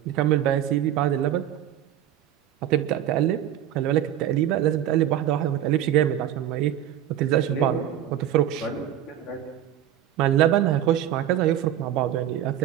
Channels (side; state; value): left; quieter; 11.2 dB